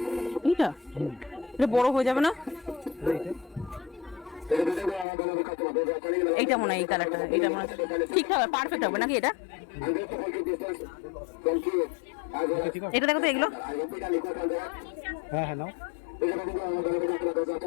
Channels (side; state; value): right; drops out; at 5.1 s